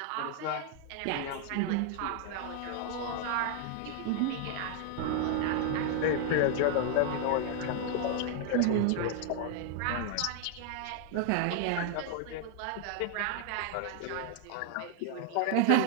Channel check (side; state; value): both; different; correlation 0.00